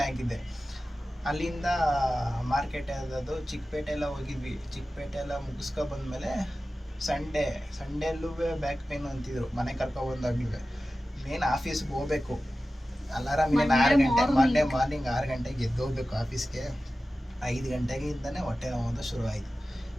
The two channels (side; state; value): both; normal; correlation 0.95